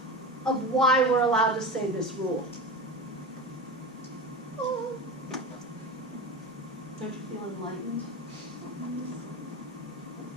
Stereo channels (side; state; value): both; normal; correlation 0.27